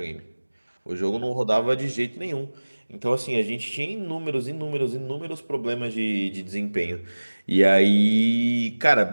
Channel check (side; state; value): both; inverted; correlation -1.00